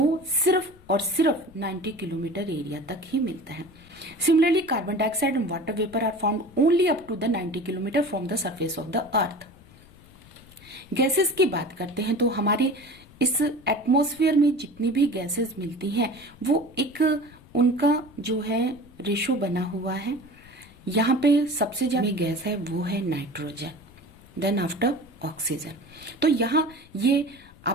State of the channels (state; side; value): noise; left; rumble, 23 dB below the sound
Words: सिर्फ और सिर्फ 90 किलोमीटर एरिया तक ही मिलता है। Similarly carbon dioxide and water vapour are found only up to the 90 kilometre from the surface of the earth. Gases की बात करते हैं तो हमारे इस एटमॉस्फेयर में जितनी भी गैसेस मिलती हैं वो एक उनका जो है रेशो बना हुआ है। यहाँ पे सबसे ज्यादा गैस है वो है नाइट्रोजन, देन आफ्टर ऑक्सीजन। तो यहाँ ये